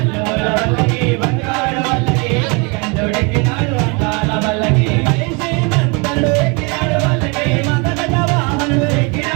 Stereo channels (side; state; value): left; quieter; 30.7 dB